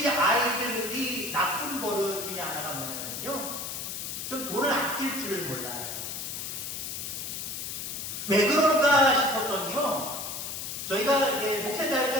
아이들이 나쁜 버릇 중에 하나가 뭐냐면요, 좀 돈을 아낄 줄을 몰라요. 왜 그럴까 싶었더니요, 저희가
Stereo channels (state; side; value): noise; left; hiss, 5 dB below the sound